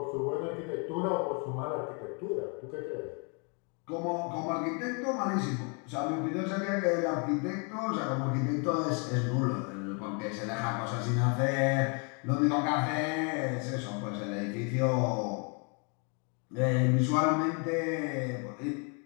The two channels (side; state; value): right; quieter; 36.2 dB